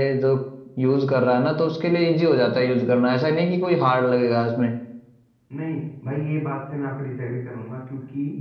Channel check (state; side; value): identical; both; correlation 1.00